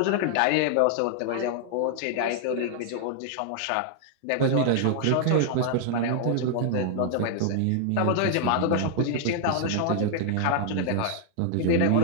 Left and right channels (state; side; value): different; both; correlation 0.00